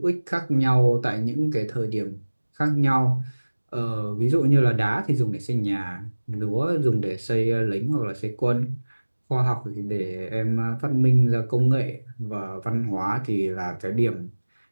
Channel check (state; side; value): inverted; both; correlation -1.00